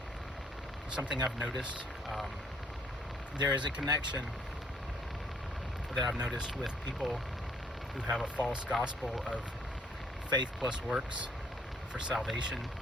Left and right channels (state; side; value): normal; both; correlation 0.65